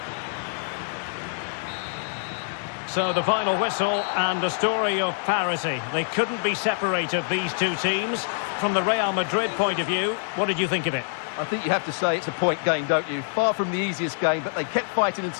So the final whistle and a story of parity. They couldn't be separated, these two teams. From the Real Madrid point of view, what did you think of it? I think you have to say it's a point game, don't you? Far from the easiest game, but they kept fighting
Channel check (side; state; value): right; silent; digital silence